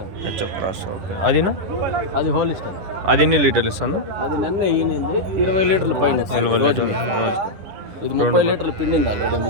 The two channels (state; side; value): late; left; 11 ms